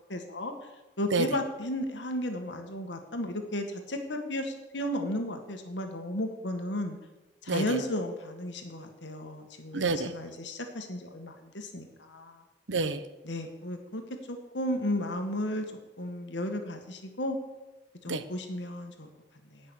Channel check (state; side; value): normal; both; correlation 0.25